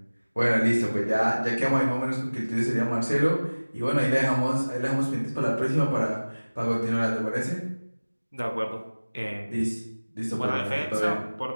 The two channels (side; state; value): both; inverted; correlation -1.00